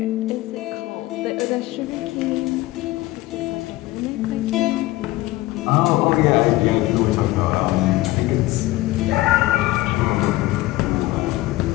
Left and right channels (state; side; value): quieter; right; 18.2 dB